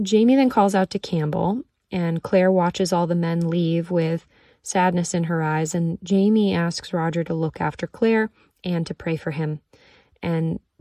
Jamie then calls out to Campbell, and Claire watches all the men leave with sadness in her eyes, and Jamie asks Roger to look after Claire and to pray for him. And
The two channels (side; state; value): both; identical; correlation 1.00